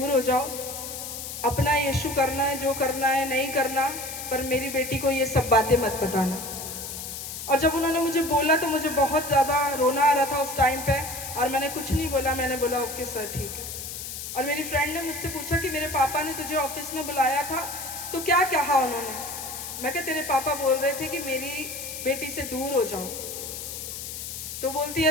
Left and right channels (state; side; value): noise; left; hiss, 8 dB below the sound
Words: हो जाओ, अपना यीशु करना है, जो करना है नहीं करना, पर मेरी बेटी को ये सब बातें मत बताना। और जब उन्होंने मुझे बोला तो मुझे बहुत ज़्यादा रोना आ रहा था उस टाइम पे, और मैंने कुछ नहीं बोला, मैंने बोला ओके सर ठीक है। और मेरी फ्रेंड ने मुझसे पूछा कि मेरे पापा ने तुझे ऑफिस में बुलाया था तो क्या कहा उन्होंने। मैं कहा तेरे पापा बोल रहे थे कि मेरी बेटी से दूर हो जाओ। तो बोलती